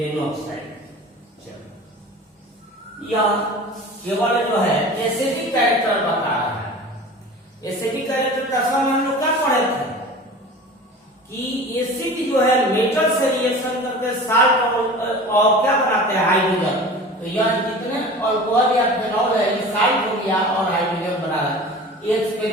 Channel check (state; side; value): normal; both; correlation 0.38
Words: यह केवल जो है एसिडिक कैरेक्टर बता रहा है। एसिडिक कैरेक्टर का हम लोग क्या पढ़े थे कि एसिड जो है मेटल से रिएक्शन करके साल्ट और क्या बनाते हैं, हाइड्रोजन। तो यह जितने अल्कोहल या फिनॉल है, ये साल्ट हो गया और हाइड्रोजन बना रहा है। ये